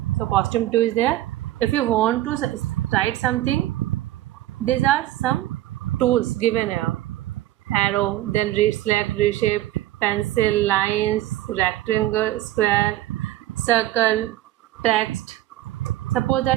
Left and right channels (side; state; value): left; quieter; 14.8 dB